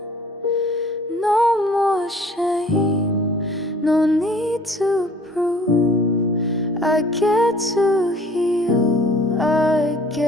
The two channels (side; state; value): both; normal; correlation 0.52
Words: No more shame, no need to prove. I get to heal, I